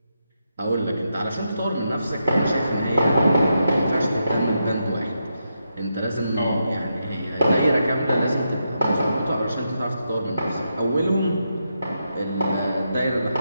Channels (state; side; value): inverted; both; correlation -0.84